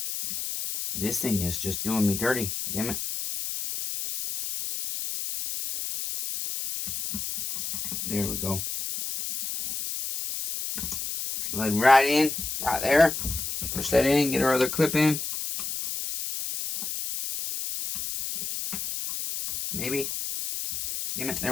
This thing is just doing me dirty. Damn it. There we go. Slide right in. Right there. Push that in. Get our other clip in. Maybe. Damn it. There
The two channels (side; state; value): left; noise; hiss, 5 dB below the sound